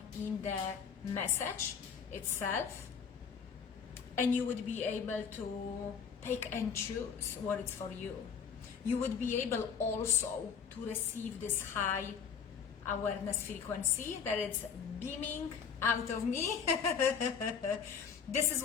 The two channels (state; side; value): quieter; right; 6.7 dB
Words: in the message itself. And you would be able to pick and choose what is for you. You would be able also to receive this high awareness frequency that is beaming out of me. This is